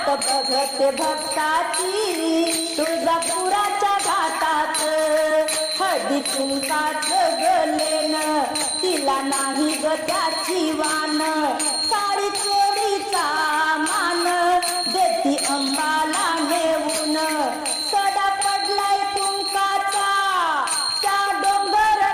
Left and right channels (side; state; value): both; identical; correlation 1.00